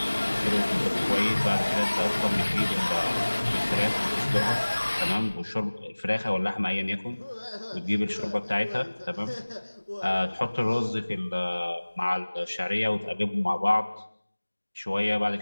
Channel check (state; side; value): inverted; both; correlation -1.00